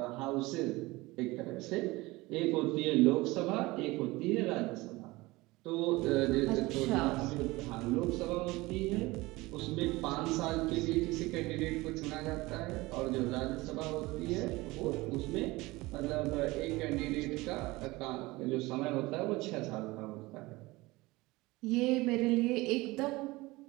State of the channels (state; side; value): quieter; left; 21.2 dB